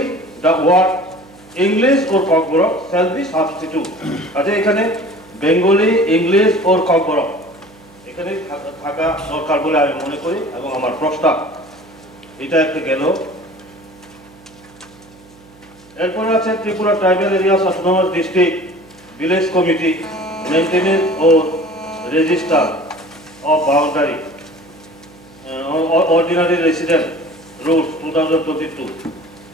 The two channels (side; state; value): right; noise; hum, 25 dB below the sound